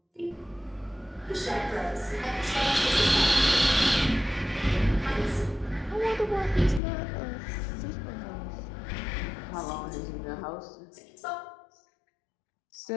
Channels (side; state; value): right; drops out; at 6.8 s